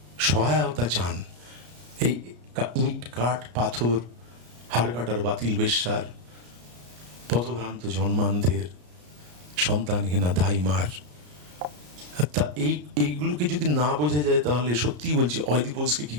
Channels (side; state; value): left; late; 33 ms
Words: সহায়তা চান। এই ইট কাঠ পাথর, হাড় কাটার বাতিল বেশ্যার, পথভ্রান্ত জন্মান্ধের, সন্তানহীনা ধাইমার, তা এইগুলোকে যদি না বোঝা যায় তাহলে সত্যিই বলছি অয়দিপোজকে কি